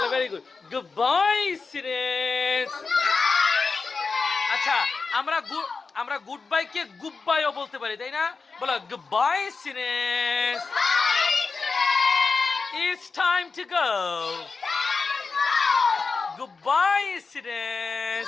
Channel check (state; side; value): quieter; right; 4.5 dB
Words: very good. Goodbye, students. আচ্ছা, আমরা good bye কে good বাইও বলতে পারি, তাই না? বলো goodbye students. It's time to go. Goodbye,